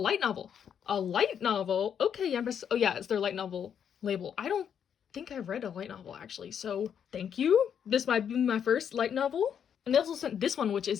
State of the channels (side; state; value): right; quieter; 8.2 dB